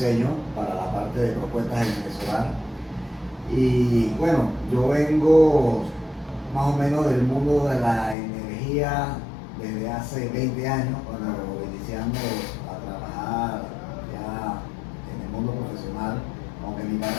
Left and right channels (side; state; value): right; drops out; at 8.2 s